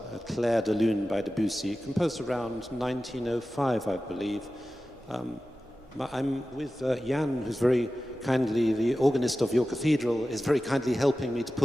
Clair de Lune by Debussy, composed around 1905, I believe. I'm with Jan, who's very kindly, the organist of your cathedral, is very kindly helping me to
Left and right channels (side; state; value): both; normal; correlation 0.95